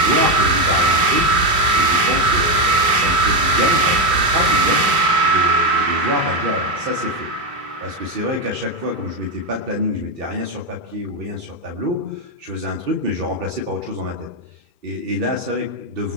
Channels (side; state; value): left; late; 2.8 ms